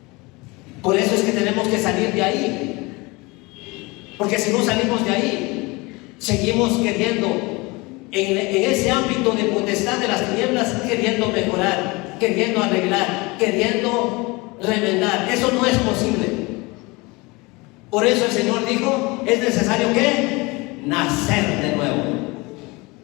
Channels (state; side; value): quieter; right; 24.8 dB